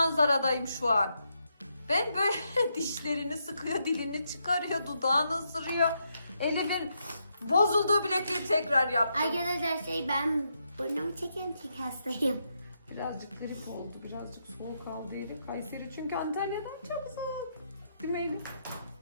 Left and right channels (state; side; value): inverted; both; correlation -0.80